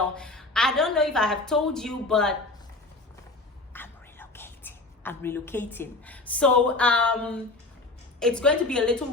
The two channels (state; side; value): quieter; right; 3.2 dB